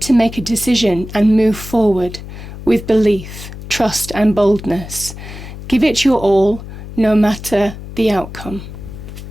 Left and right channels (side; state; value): left; noise; hum, 12 dB below the sound